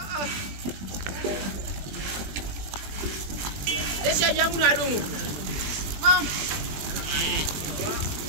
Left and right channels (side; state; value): left; late; 20 ms